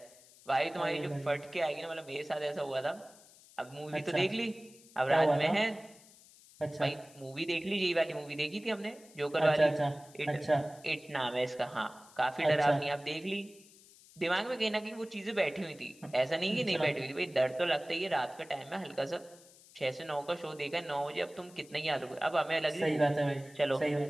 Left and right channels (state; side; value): noise; left; hiss, 24 dB below the sound